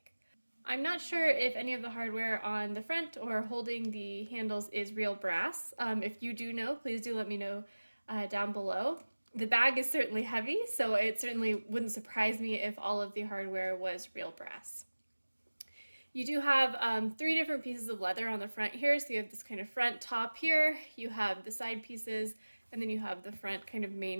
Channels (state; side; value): inverted; both; correlation -1.00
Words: I'm not sure if any of the hardware on the front or holding the handles is real brass. If you do know, please do let me know down below. The bag is certainly heavy, so it certainly wouldn't surprise me if all of the hardware was real brass. You do have three different pieces of leather on the front here, so you have this kind of front top here, you have the side pieces, and then you have the front kind of